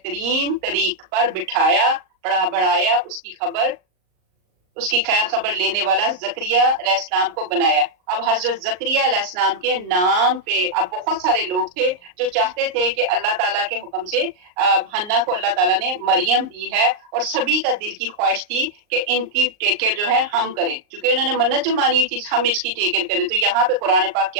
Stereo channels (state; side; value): late; left; 38 ms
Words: طریق پر بٹھایا، بڑھایا، اس کی خیر خبر لینے والا زکریا علیہ السلام کو بنایا. اب حضرت زکریا علیہ السلام کے نام پہ اب بہت سارے لوگ تھے جو چاہتے تھے کہ اللہ تعالیٰ کے حکم سے حنا کو اللہ تعالیٰ نے مریم دی ہے، اور سبھی کا دل کی خواہش تھی کہ ان کی ٹیک کیئر جو ہے ہم کریں، چونکہ انہوں نے منت جو مانی ہوئی تھی ہم اس کی ٹیک کیئر کریں. تو یہاں پہ قرآن پاک